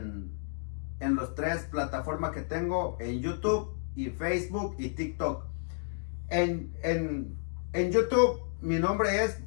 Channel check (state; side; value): silent; right; digital silence